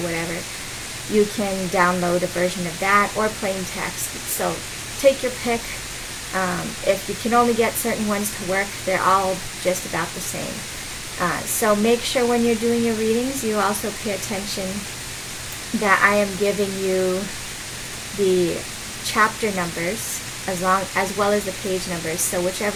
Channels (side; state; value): both; identical; correlation 1.00